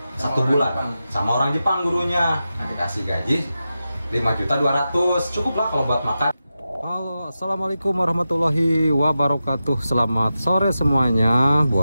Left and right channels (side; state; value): both; inverted; correlation -0.91